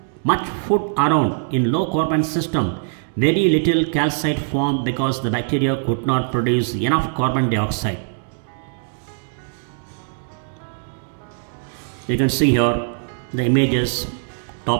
much food around in low carbon system, very little calcite formed because the bacteria could not produce enough carbon dioxide. You can see here the images,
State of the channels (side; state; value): left; silent; digital silence